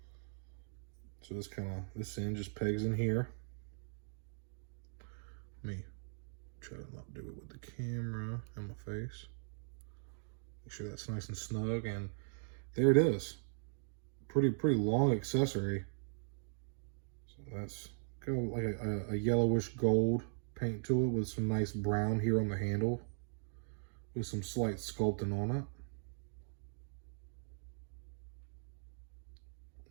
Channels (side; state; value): left; silent; digital silence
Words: So this end just pegs in here. Let me try to not do it with the camera in my face. Make sure that's nice and snug, and there it is. Pretty long accessory. So that's got like a yellowish gold paint to it with some nice brown here on the handle with some slight sculpting on it.